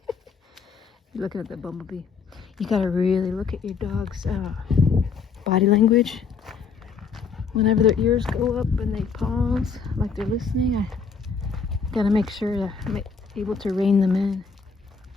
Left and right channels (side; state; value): right; quieter; 5.5 dB